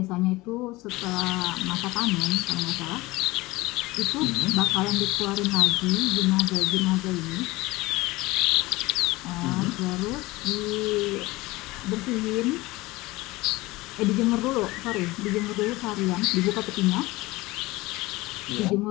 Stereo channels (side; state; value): right; quieter; 20.5 dB